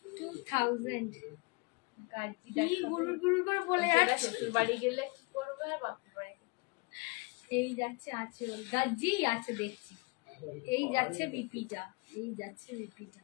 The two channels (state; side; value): quieter; right; 28.6 dB